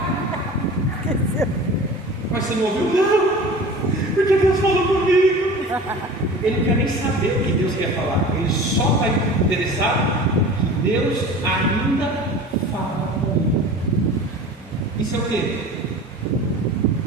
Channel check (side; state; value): both; normal; correlation 0.38